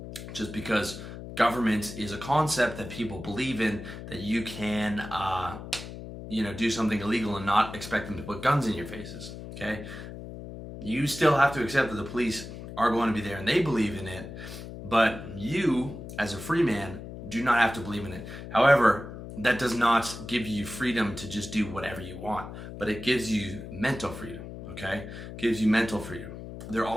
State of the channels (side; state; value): left; noise; hum, 11 dB below the sound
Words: just because government is a concept that people believe in, that you can, do something illegal and not expect them to put guns in your faces, okay? You still have to accept that the police are going to be there and they believe in it, but you, as a free man, do not have to believe in it. However, that does not give you freedom to just do whatever you want, but it gives you mental freedom, okay? It gives you mental freedom. There